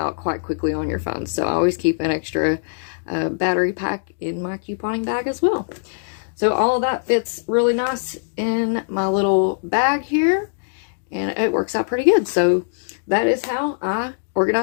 quite quickly on your phone. So I always keep an extra battery pack in my couponing bag as well. So all of that fits really nice in my little bag here, and it works out pretty good. So that is how I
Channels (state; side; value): silent; right; digital silence